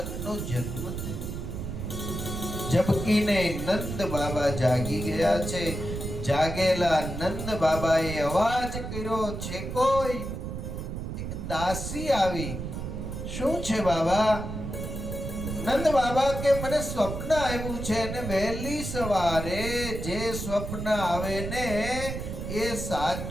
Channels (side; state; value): right; noise; rumble, 6 dB below the sound